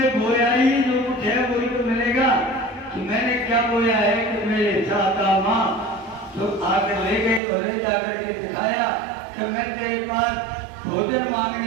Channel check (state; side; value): drops out; left; at 7.4 s